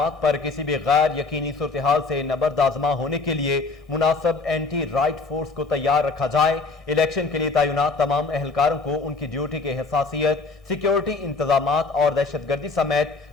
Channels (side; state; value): right; quieter; 3.9 dB